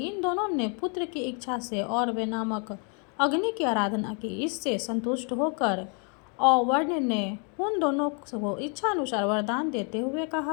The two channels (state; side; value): quieter; right; 38.2 dB